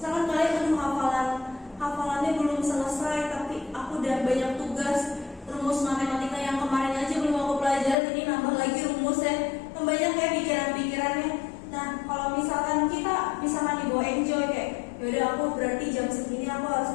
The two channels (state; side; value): drops out; right; at 8.0 s